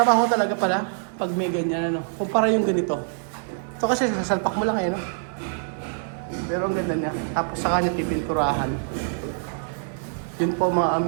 talaga pala pag may ganyan kumpara yung ganito. Ito kasi sasalpak mo lang no? Pero ang ganda niya. Tapos saka niya pipinturahan. Yun po mga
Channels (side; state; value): left; silent; 62 dB below the other